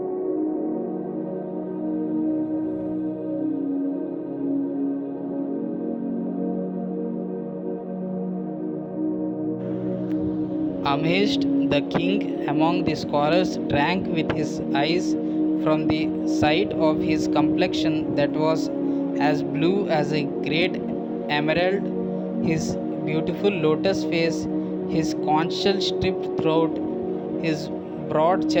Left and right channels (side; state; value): both; identical; correlation 1.00